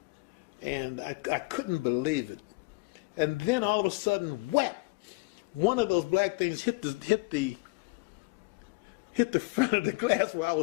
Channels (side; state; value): right; quieter; 26.2 dB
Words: and I couldn't believe it. And then all of a sudden, whap, one of those black things hit the front of the glass where I